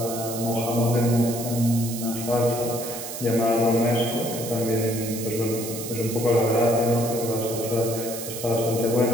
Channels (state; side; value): noise; right; hiss, 8 dB below the sound